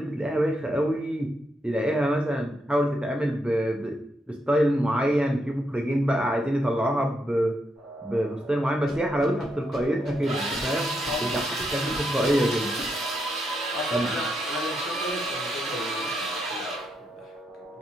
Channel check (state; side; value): normal; both; correlation 0.81